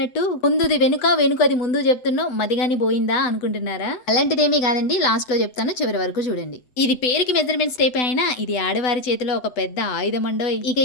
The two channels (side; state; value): right; late; 8.0 ms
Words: ముందుది వెనుక వెనుకది ముందు చెప్తున్నావు మదిగాని పోయిందా అనుకుంటున్నారా? అలాంటిదేమీ కాదండి, లాస్ట్ లో చెప్తాను, చివరి వరకు చూడండి. ఇది పేరుకి మెజర్మెంట్స్ టేప్ అయినా ఇది ఆడవారి చేతిలో ఒక పెద్ద ఆయుధం అండో. ఇక